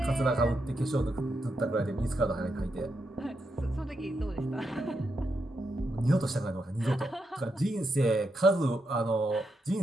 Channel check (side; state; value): both; normal; correlation 0.83